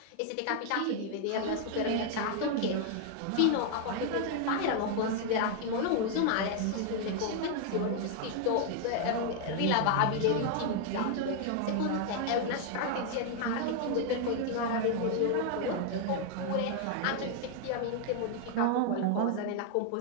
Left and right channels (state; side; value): different; both; correlation 0.00